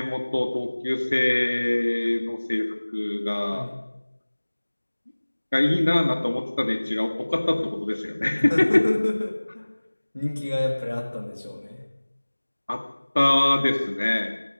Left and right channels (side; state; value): both; inverted; correlation -1.00